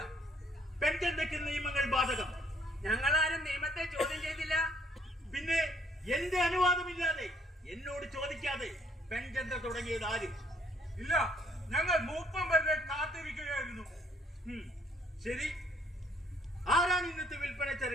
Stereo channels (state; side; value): normal; both; correlation 0.65